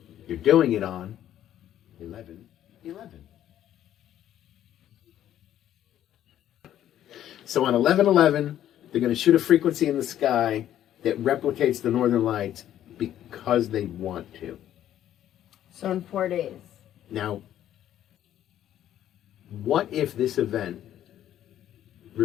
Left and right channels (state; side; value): quieter; right; 11.6 dB